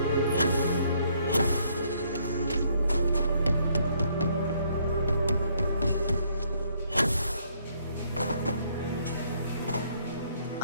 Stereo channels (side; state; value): both; inverted; correlation -0.68